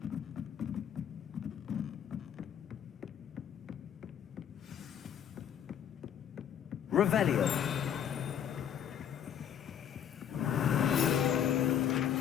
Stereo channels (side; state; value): right; quieter; 9.1 dB